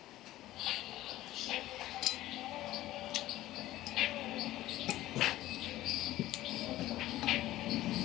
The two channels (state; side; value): quieter; right; 15.4 dB